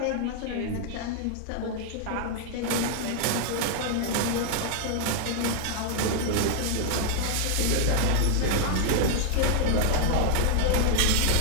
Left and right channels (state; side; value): different; both; correlation 0.00